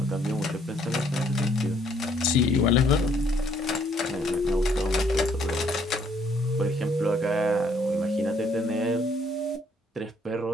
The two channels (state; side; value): normal; both; correlation 0.66